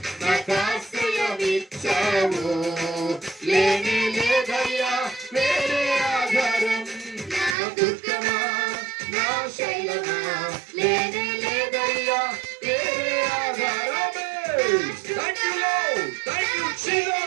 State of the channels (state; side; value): drops out; left; at 7.6 s